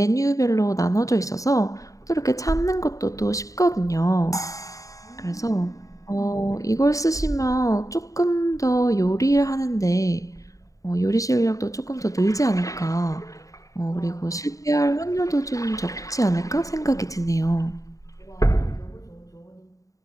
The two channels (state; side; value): late; right; 0.16 ms